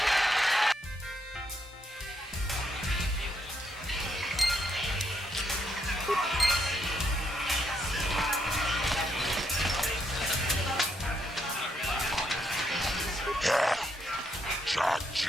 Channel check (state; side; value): normal; both; correlation 0.76